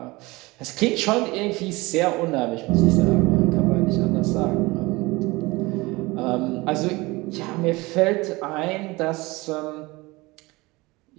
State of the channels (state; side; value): quieter; left; 22.5 dB